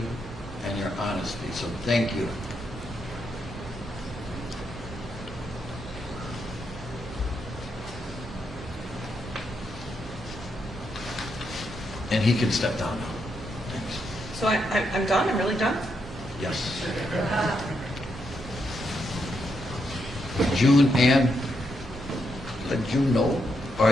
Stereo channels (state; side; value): normal; both; correlation 0.81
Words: and your honesty, so thank you. And he can step down now. Thanks. So I'm done? I'm really done? Yes. June and let June know. All